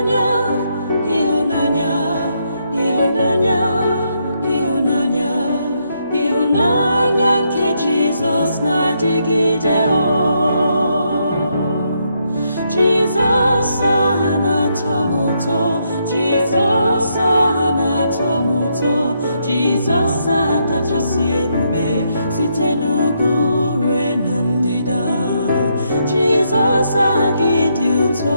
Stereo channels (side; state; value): both; inverted; correlation -0.77